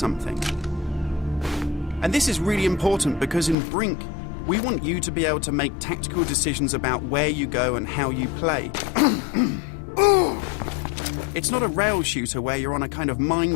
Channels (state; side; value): drops out; right; at 3.6 s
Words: And this is really important because in Brink, we want you to be able to make tactical decisions about where you go and how you play. It's not a rail shooter where you're on a kind of